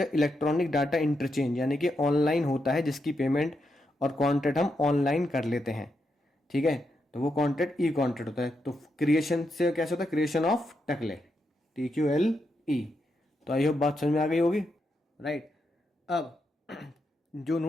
इलेक्ट्रॉनिक डाटा इंटरचेंज यानी कि ऑनलाइन होता है, जिसकी पेमेंट और कॉन्ट्रैक्ट हम ऑनलाइन कर लेते हैं, ठीक है। तो वो कॉन्ट्रैक्ट ई कॉन्ट्रैक्ट होता है। तो क्रिएशन से कैसे होता है, क्रिएशन ऑफ टकले, TQLE। तो आई होप बात समझ में आ गई होगी, राइट। अब जो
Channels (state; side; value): normal; both; correlation 0.83